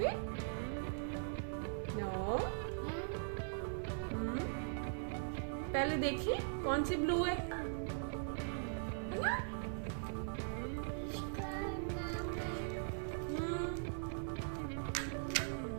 नो पहले देखिए कौन सी ब्लू है ना?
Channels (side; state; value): left; silent; 51 dB below the other